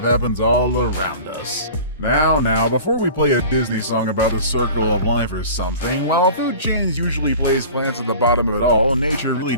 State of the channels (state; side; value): inverted; both; correlation -0.40